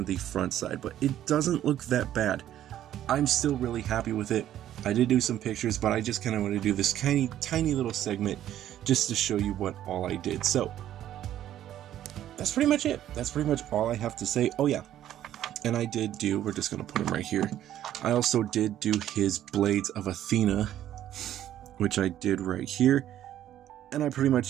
the front side, but it doesn't look that bad. I'm still really happy with it. I did do some pictures, but I just kind of want to do this tiny little segment just to show you what all I did. So that's pretty much it. That's pretty much all I have to say. Oh yeah, and I did do, we're just going to put him right here. I also did do his Blades of Athena, which I did right here. And I pretty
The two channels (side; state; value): left; quieter; 11.9 dB